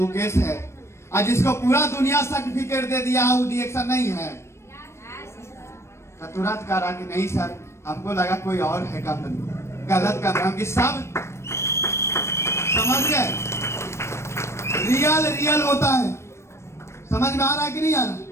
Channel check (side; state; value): right; late; 0.13 ms